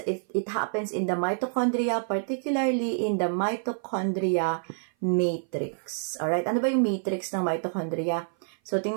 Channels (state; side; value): silent; left; 56 dB below the other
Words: It happens in the mitochondria, particularly in the mitochondria matrix. Alright, ano ba yung matrix ng mitochondria? So,